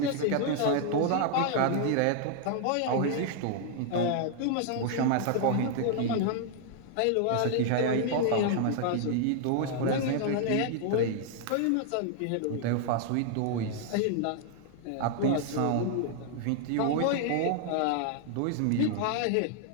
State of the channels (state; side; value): different; both; correlation 0.00